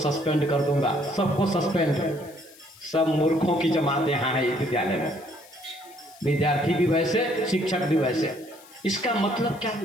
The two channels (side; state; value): left; noise; hiss, 23 dB below the sound